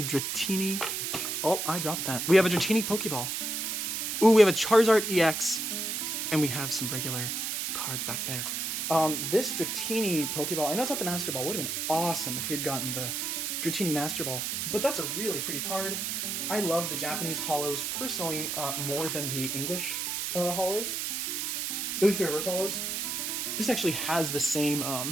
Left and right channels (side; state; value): right; noise; hiss, 2 dB below the sound